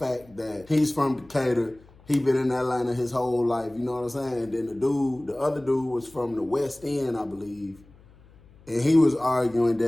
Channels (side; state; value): left; noise; hum, 26 dB below the sound